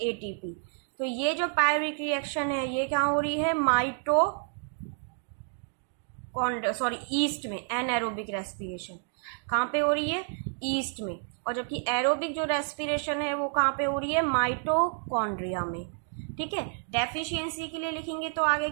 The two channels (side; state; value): left; silent; 56 dB below the other